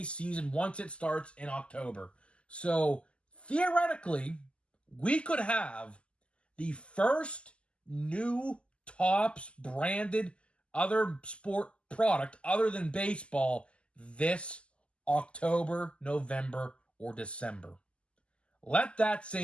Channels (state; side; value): late; right; 0.054 ms